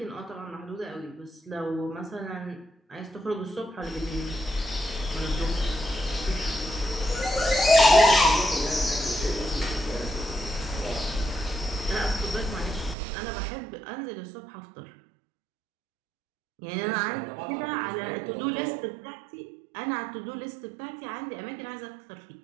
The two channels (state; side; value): drops out; left; at 13.0 s